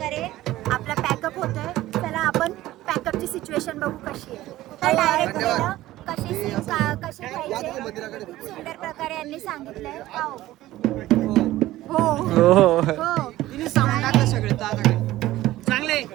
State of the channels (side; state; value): left; quieter; 15.8 dB